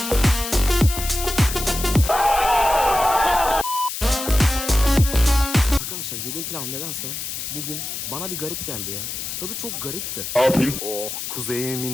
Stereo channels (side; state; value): left; noise; hiss, 6 dB below the sound